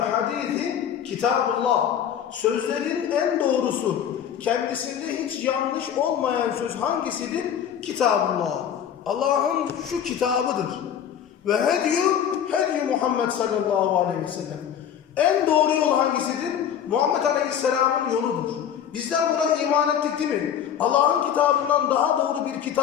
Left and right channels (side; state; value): right; quieter; 9.1 dB